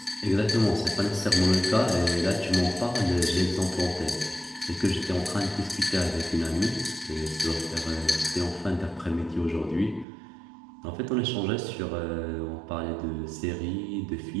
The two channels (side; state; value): left; drops out; at 10.1 s